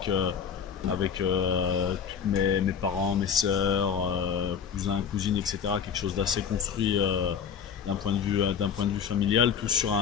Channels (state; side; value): quieter; right; 7.3 dB